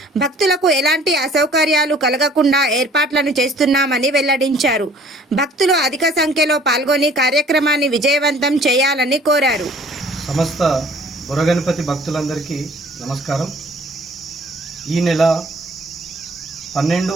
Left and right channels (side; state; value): both; normal; correlation 0.53